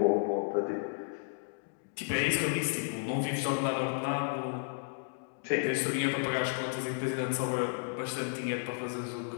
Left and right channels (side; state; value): right; silent; digital silence